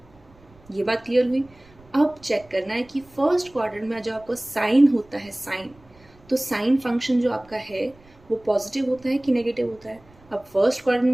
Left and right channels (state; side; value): noise; right; rumble, 27 dB below the sound